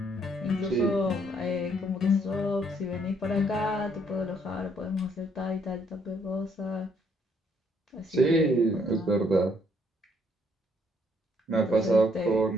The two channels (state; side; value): normal; both; correlation 0.68